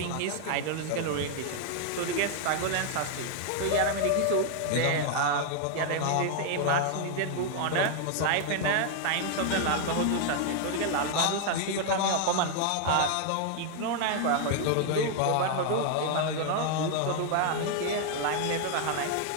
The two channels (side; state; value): both; different; correlation 0.00